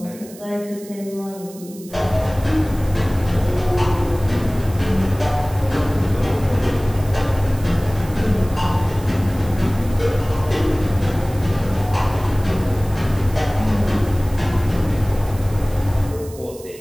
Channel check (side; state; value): right; noise; hiss, 20 dB below the sound